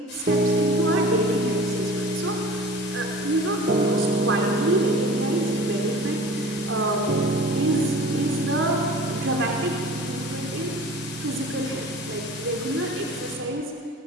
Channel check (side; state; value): both; normal; correlation 0.41